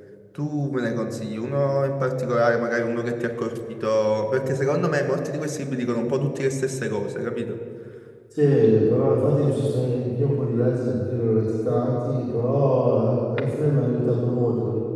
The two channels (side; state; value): both; identical; correlation 1.00